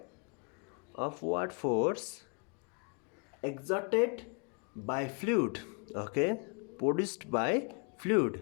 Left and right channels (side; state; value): right; quieter; 36.4 dB